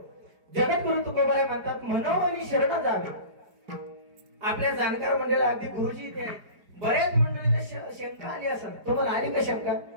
जगद्गुरु तुकोबाराय म्हणतात मनोमनी शरण जावे. आपल्या जाणकार मंडळाला अगदी गुरुजी इथे आहेत. बऱ्याच मंडळीला शंका आली असेल, तुम्हाला आली का शंका?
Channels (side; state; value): left; late; 4.9 ms